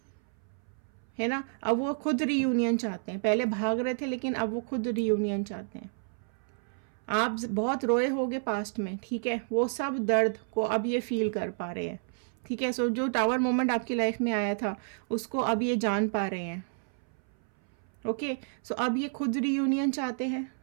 है ना। अब वो खुद रीयूनियन चाहते हैं, पहले भाग रहे थे लेकिन अब वो खुद रीयूनियन चाहते हैं। आप बहुत रोए होगे पास्ट में, ठीक है, वो सब दर्द को अब ये फील कर पा रहे हैं, ठीक है। सो जो टावर मोमेंट आपकी लाइफ में आया था उसको अब ये जान पा रहे हैं। ओके, सो अब ये खुद रीयूनियन चाहते हैं।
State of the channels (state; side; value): silent; left; 58 dB below the other